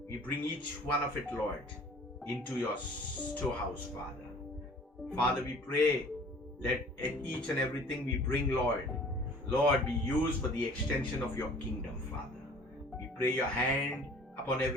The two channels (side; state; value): both; normal; correlation 0.50